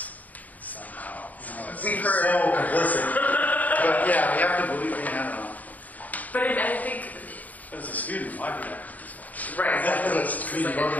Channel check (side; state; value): right; late; 0.077 ms